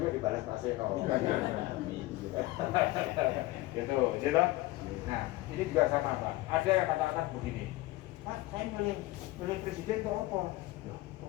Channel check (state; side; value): quieter; right; 18.8 dB